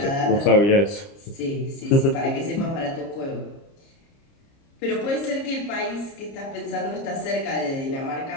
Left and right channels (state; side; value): late; right; 30 ms